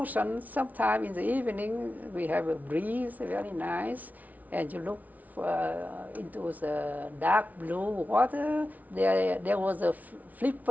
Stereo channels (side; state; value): left; late; 0.075 ms